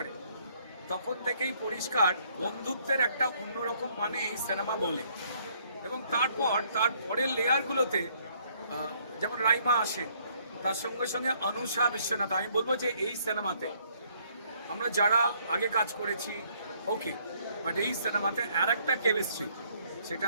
তখন থেকেই পরিষ্কার বন্ধুত্বের একটা অন্যরকম মানে এই সিনেমা বলে। এবং তারপর তার পরের লেয়ারগুলোতে যেমন রাইমা আসে, তার সঙ্গে সঙ্গে অনুষা বিশ্বনাথ। আমি বলবো যে এই সিনেমাতে আমরা যারা আগে কাজ করেছি ওকে, বাট এই সিনেমাতে আর একটা কেমিস্ট্রি, সেটা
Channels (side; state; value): both; inverted; correlation -0.65